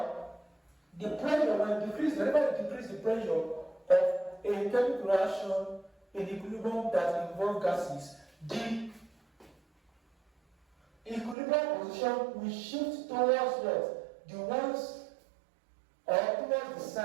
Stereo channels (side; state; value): left; drops out; at 11.4 s